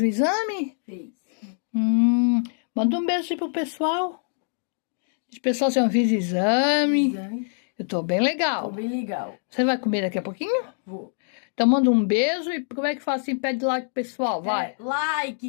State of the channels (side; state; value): right; silent; digital silence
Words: o exame? Fez. Manda um beijo aí pro pessoal. Os pessoal já fiz exame. Eu tô bem legal. Tô bem legal. Você vai comer daqui a pouquinho? Vou. Então manda um beijo e como é que faz assim? Pede like pro pessoal, vai.